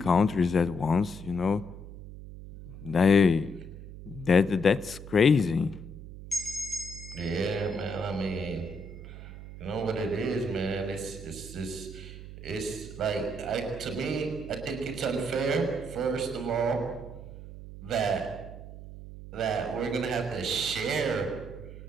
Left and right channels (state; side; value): noise; right; hum, 13 dB below the sound